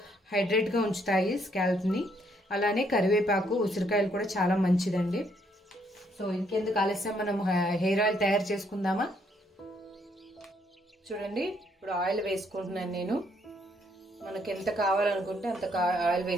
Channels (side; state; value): both; normal; correlation 0.70